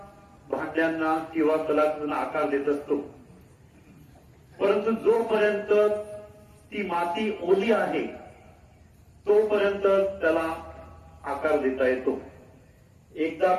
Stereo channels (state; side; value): identical; both; correlation 1.00